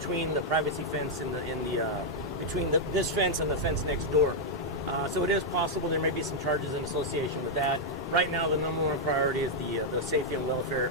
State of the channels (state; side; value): normal; both; correlation -0.04